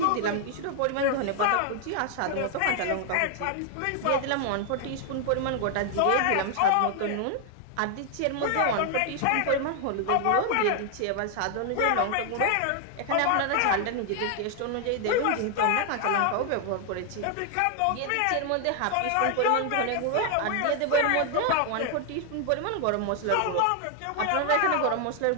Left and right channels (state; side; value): different; both; correlation 0.00